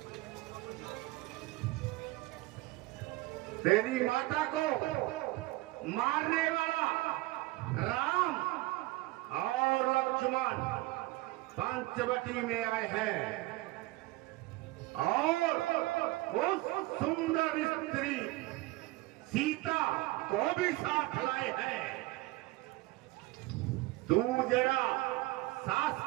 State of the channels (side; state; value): left; quieter; 19.8 dB